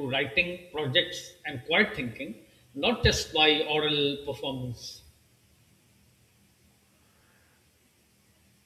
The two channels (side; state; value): both; identical; correlation 1.00